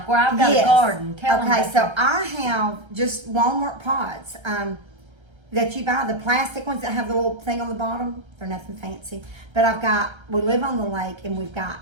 where I've got a garden. Tell them. Okay, so I have just Walmart pots that you buy, the plastic ones that have the little thing on the bottom. They're nothing fancy. But we live on the lake, and we've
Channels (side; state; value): left; late; 1.3 ms